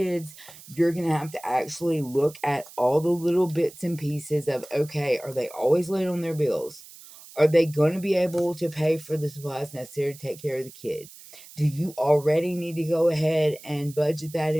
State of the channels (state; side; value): noise; right; hiss, 19 dB below the sound